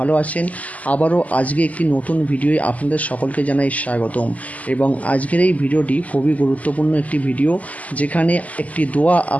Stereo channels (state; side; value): late; right; 0.073 ms